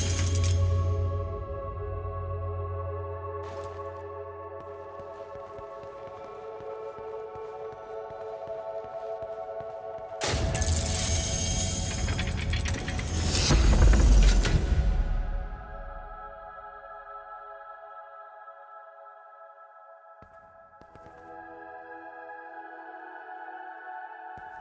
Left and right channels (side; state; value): both; identical; correlation 1.00